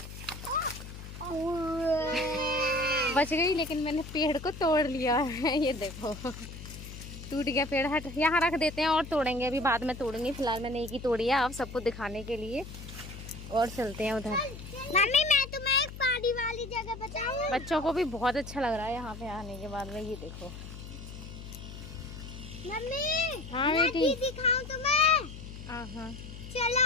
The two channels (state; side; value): noise; left; hum, 12 dB below the sound